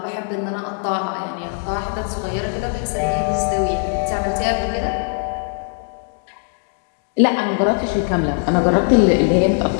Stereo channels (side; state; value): right; silent; 60 dB below the other